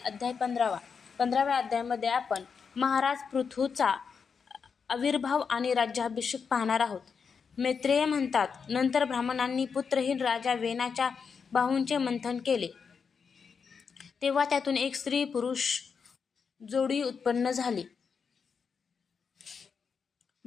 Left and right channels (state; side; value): quieter; right; 5.9 dB